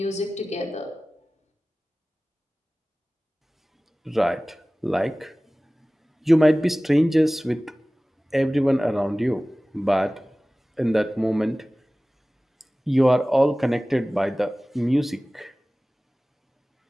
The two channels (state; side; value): normal; both; correlation 0.98